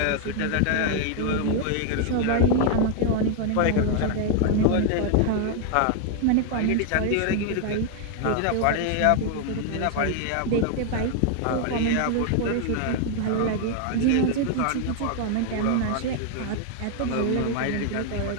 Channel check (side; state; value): both; different; correlation 0.00